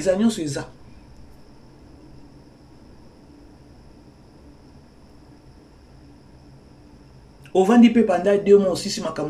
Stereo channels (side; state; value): both; identical; correlation 1.00